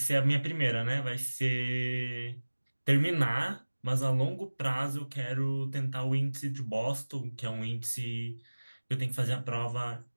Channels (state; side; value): inverted; both; correlation -1.00